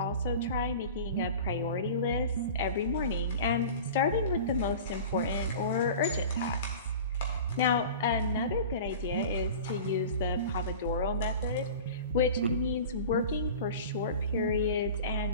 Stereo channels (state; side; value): inverted; both; correlation -0.37